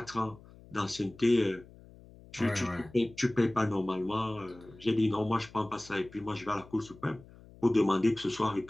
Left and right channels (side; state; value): left; noise; hum, 22 dB below the sound